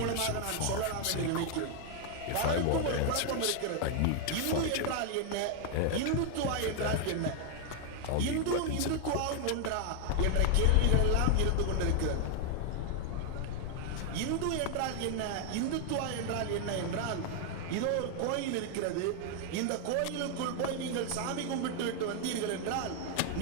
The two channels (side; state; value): both; different; correlation 0.00